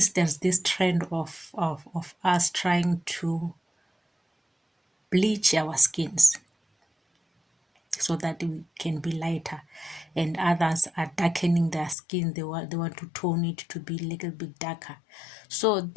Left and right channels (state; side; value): drops out; right; at 12.0 s